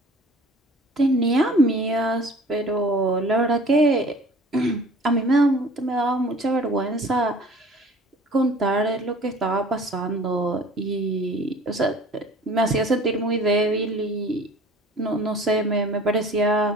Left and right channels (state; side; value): normal; both; correlation 0.48